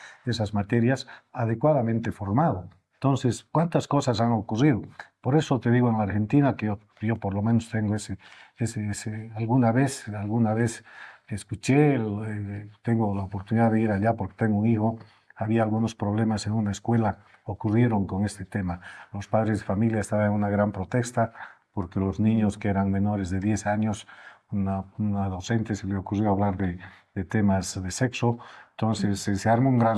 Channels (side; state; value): both; identical; correlation 1.00